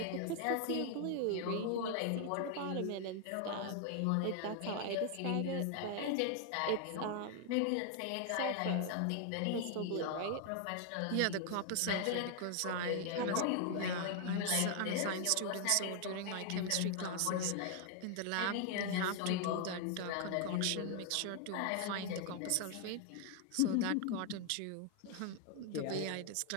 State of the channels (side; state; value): both; different; correlation 0.00